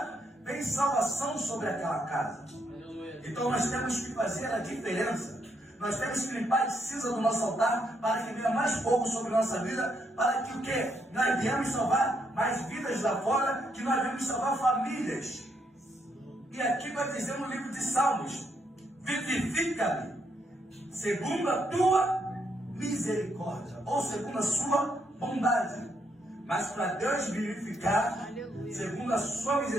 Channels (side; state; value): both; normal; correlation 0.76